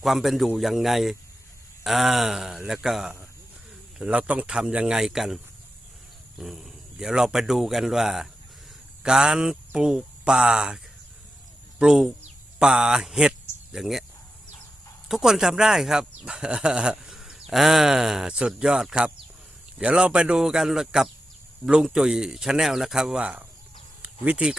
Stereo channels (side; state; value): both; normal; correlation 0.89